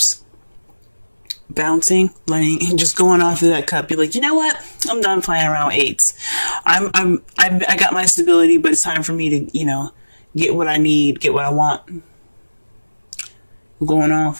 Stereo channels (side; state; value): both; inverted; correlation -1.00